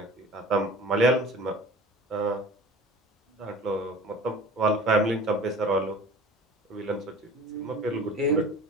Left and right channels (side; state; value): both; normal; correlation 0.41